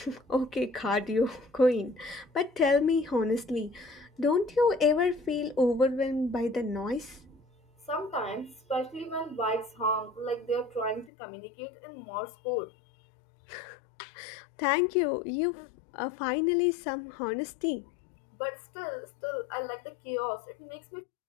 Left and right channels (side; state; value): right; drops out; at 11.1 s